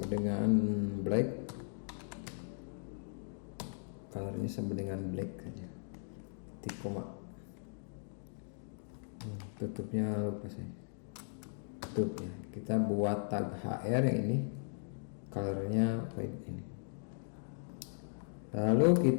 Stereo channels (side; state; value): right; silent; digital silence